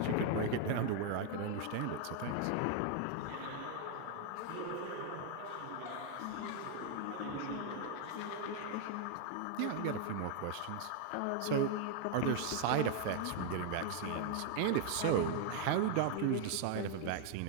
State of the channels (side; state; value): both; different; correlation 0.00